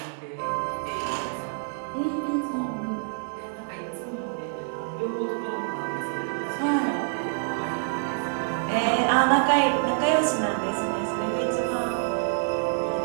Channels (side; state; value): left; silent; digital silence